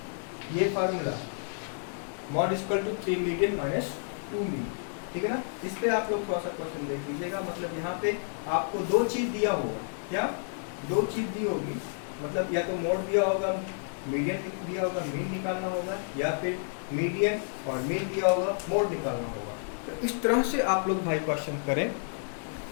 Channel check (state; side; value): silent; right; digital silence